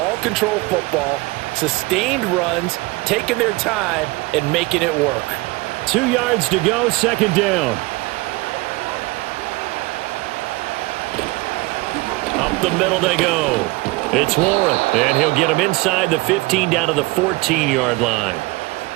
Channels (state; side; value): quieter; left; 22.7 dB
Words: control football, sustained runs, taking their time, and making it work. 2 yards to go, 2nd down. Up the middle they go. It's Warren, and he'll get him inside the 15 down to the 14-yard line.